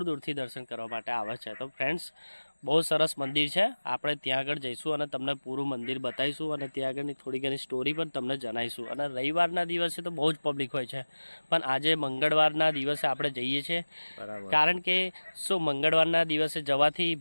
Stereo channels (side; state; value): both; inverted; correlation -1.00